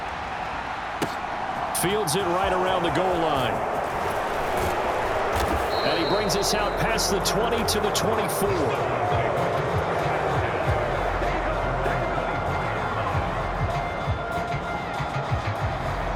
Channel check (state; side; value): identical; both; correlation 1.00